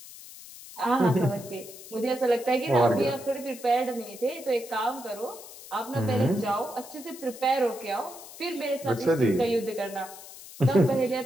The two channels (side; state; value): left; noise; hiss, 16 dB below the sound